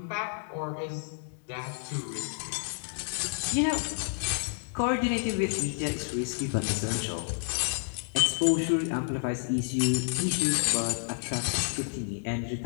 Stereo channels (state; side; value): silent; right; digital silence